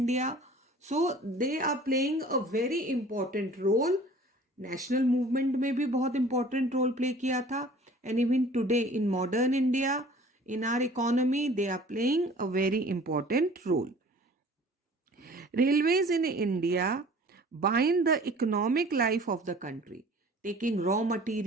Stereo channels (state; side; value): normal; both; correlation 0.48